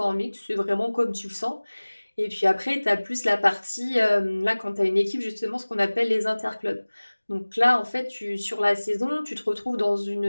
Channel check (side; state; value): both; inverted; correlation -1.00